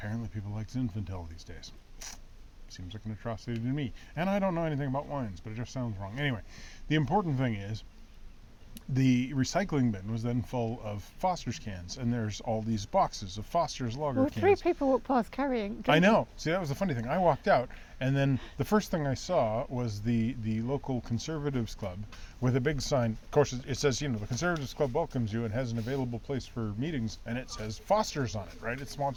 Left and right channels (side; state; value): both; identical; correlation 1.00